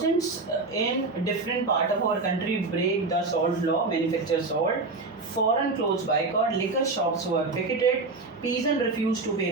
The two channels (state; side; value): quieter; left; 3.6 dB